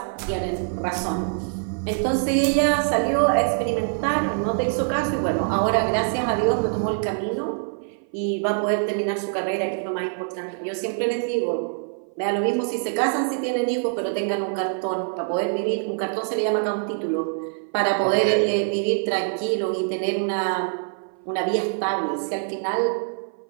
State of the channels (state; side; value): silent; left; 57 dB below the other